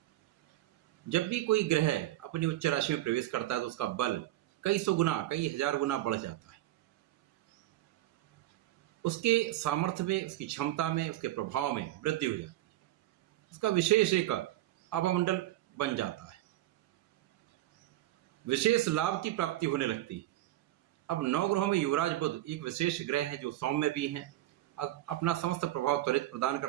जब भी कोई ग्रह अपनी उच्च राशि में प्रवेश करता है तो उसका बल कई सौ गुना, कई हजार गुना बढ़ जाता है। उसके सामर्थ्य में, उसकी क्षमता में, उसके प्रभाव में वृद्धि हो जाती है। उसका विशेष एक अवमंडल बन जाता है। विशेष लाभ की प्राप्ति होने लगती है। अब नवग्रहों में युवराज बुध एक विशेष ग्रह है जो सौम्य भी हैं, अपना समस्त प्रभाव त्वरित प्रदान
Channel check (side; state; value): left; quieter; 15.3 dB